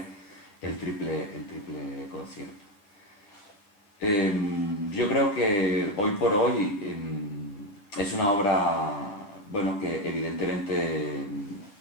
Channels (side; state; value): right; late; 10 ms